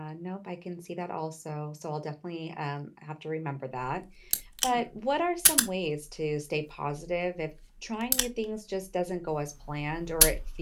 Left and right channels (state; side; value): identical; both; correlation 1.00